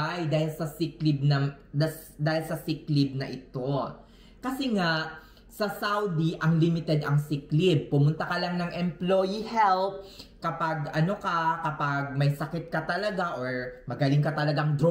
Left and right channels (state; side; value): identical; both; correlation 1.00